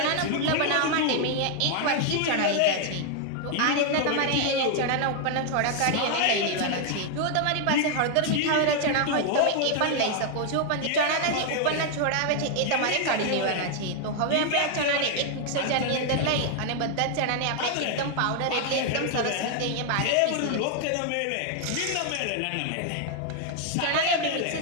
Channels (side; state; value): both; different; correlation 0.00